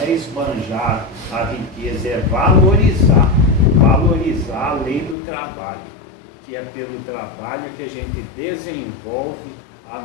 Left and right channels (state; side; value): drops out; right; at 5.2 s